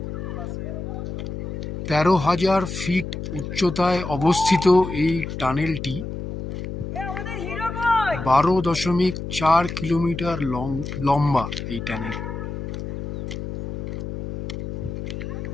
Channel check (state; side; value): noise; left; hum, 6 dB below the sound